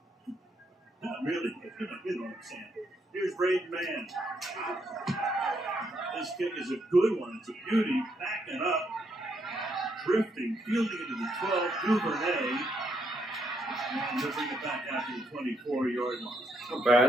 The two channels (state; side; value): normal; both; correlation 0.75